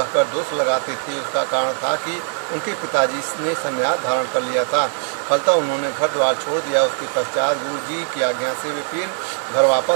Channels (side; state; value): left; silent; 55 dB below the other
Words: दोष लगाते थे। उसका कारण था कि उनके पिताजी ने संन्यास धारण कर लिया था। फलतः उन्होंने घर द्वार छोड़ दिया। उसके पश्चात गुरु जी की आज्ञा से वे फिर घर